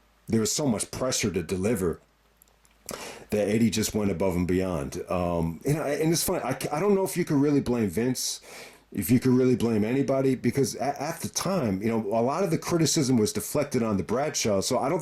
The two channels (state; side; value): identical; both; correlation 1.00